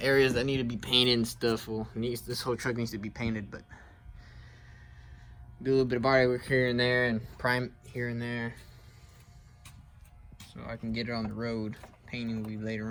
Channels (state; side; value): identical; both; correlation 1.00